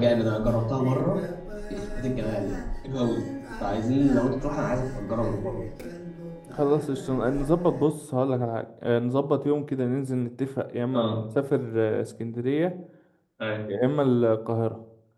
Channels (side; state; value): both; identical; correlation 1.00